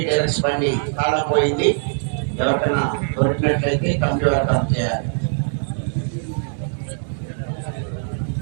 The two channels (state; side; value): silent; left; digital silence